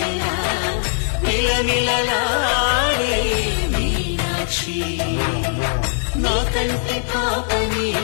నిలనిలలాడే మీనాక్షి నా కంటి పాపని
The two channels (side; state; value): right; silent; digital silence